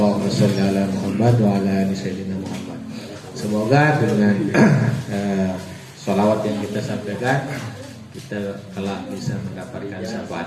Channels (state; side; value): identical; both; correlation 1.00